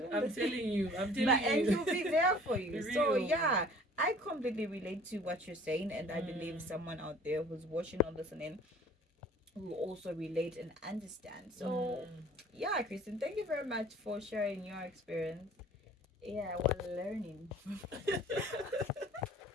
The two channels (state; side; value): normal; both; correlation 0.50